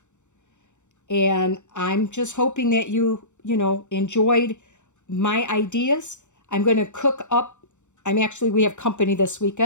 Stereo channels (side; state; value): right; late; 0.84 ms